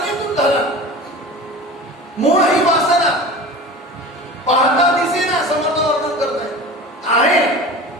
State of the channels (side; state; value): both; normal; correlation 0.35